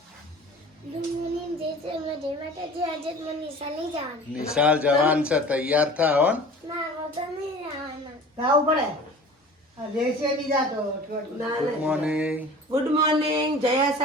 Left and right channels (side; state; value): both; normal; correlation 0.42